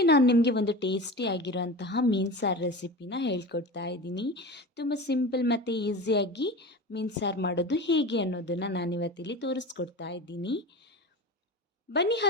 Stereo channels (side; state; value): both; normal; correlation 0.31